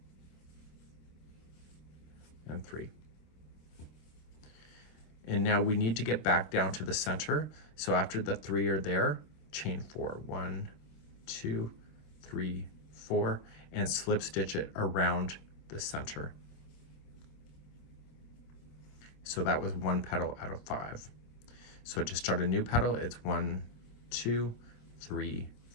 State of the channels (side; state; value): right; late; 26 ms